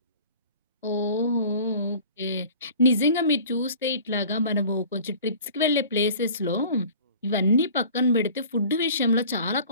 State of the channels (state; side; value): inverted; both; correlation -0.45